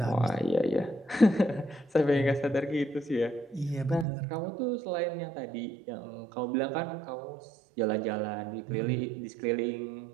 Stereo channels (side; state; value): left; drops out; at 4.0 s